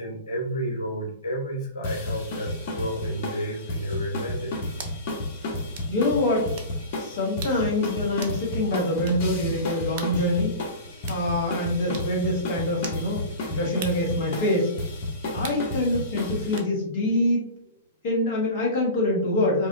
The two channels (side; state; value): both; inverted; correlation -0.32